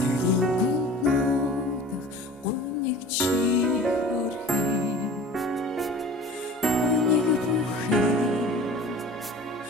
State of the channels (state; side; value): normal; both; correlation 0.43